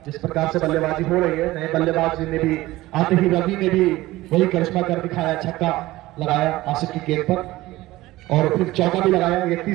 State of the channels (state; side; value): quieter; left; 17.9 dB